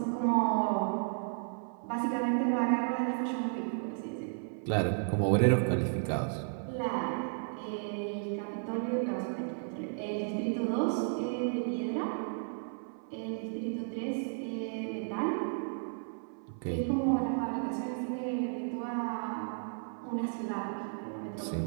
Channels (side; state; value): left; silent; 55 dB below the other